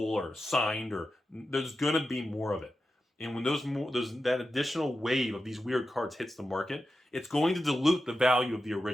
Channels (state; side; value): normal; both; correlation 0.91